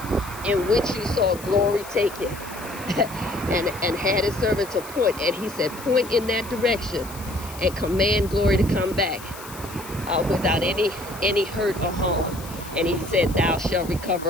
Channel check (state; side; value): noise; left; hiss, 16 dB below the sound